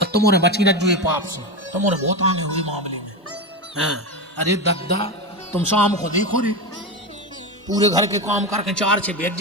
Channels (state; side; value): normal; both; correlation 0.18